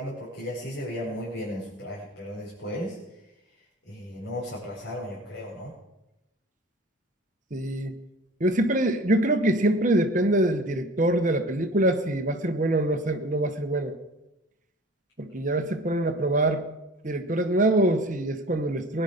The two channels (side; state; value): both; normal; correlation 0.42